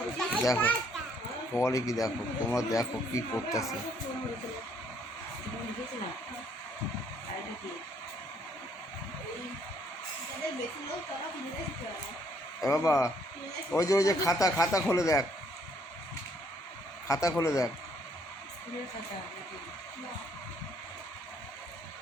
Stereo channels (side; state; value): both; normal; correlation 0.66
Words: দেখো বলে কি, দেখো তোমরা দেখো কি করতেছে। বাবা ওই যে খাতা খাতা খুলে দেখ, খাতা খুলে দেখ।